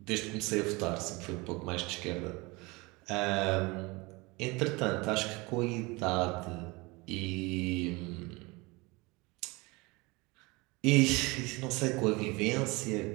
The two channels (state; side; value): quieter; left; 24.8 dB